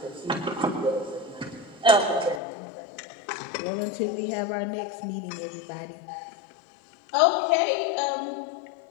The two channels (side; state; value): right; drops out; at 2.4 s